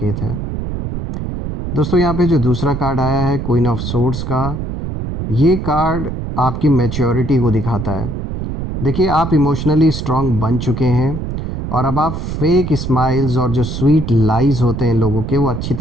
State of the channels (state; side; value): noise; right; rumble, 5 dB below the sound